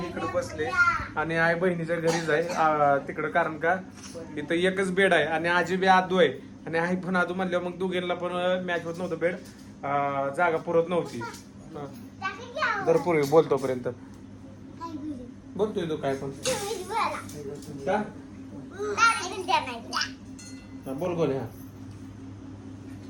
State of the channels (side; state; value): both; identical; correlation 1.00